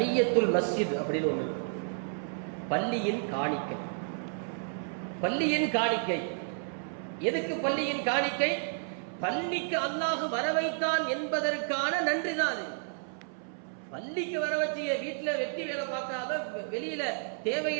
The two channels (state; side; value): silent; left; 57 dB below the other